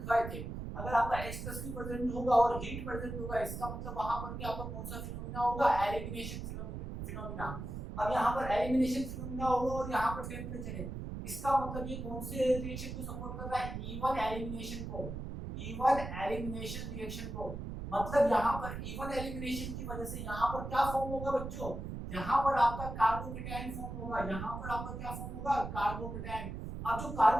थे। अगर आपका H+ भी प्रेजेंट होगा और हीट प्रेजेंट होगा, इसका मतलब वहां पर भी आपका कौन सा फिनोमेना होगा, एलिमिनेशन फिनोमेना। अब यहाँ पर एलिमिनेशन फिनोमेना होगा और यहाँ पर टेम्परेचर है, इसका मतलब ये कौन से रिएक्शन को सपोर्ट कर रहा है, E1 एलिमिनेशन को, E1 एलिमिनेशन रिएक्शन को। मतलब यहाँ पर E1 एलिमिनेशन की वजह से यहाँ पर क्या फॉर्म होगा बच्चों, यहाँ पर आपका कार्बोकेटायन फॉर्म होगा। यहाँ पर आपका क्या फॉर्म होगा, कार्बोकेटायन। अब जो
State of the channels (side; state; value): right; noise; rumble, 7 dB below the sound